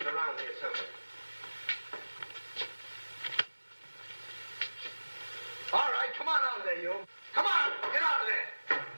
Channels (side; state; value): both; inverted; correlation -1.00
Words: around here somewhere. All right, come on out of there, you. Come on, get out of there.